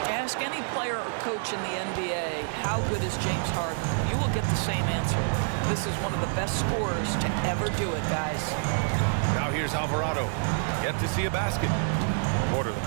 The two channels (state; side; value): silent; left; 60 dB below the other